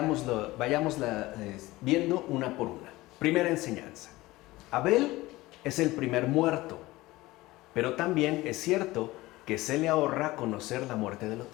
viendo una por una. Primera enseñanza. Abel es el primer muerto, pero también es cierto que se le ahorra conocer la muerte del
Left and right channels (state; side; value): quieter; right; 19.1 dB